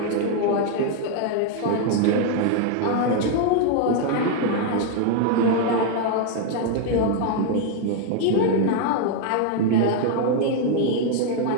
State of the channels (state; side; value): different; both; correlation 0.00